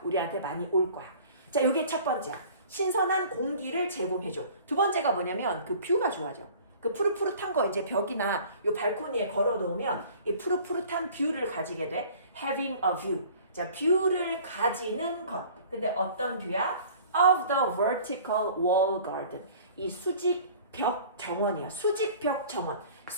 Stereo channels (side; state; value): both; inverted; correlation -0.48